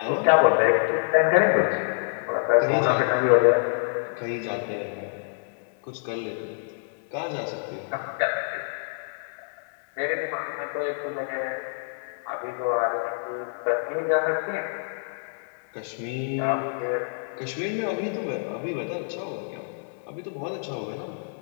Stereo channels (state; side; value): silent; right; digital silence